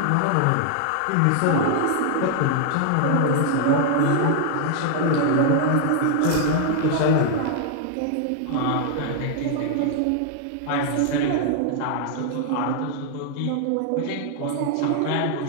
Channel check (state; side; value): different; both; correlation 0.00